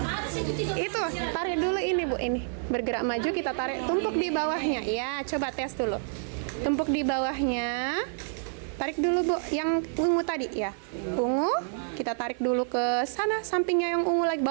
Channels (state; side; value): silent; left; 59 dB below the other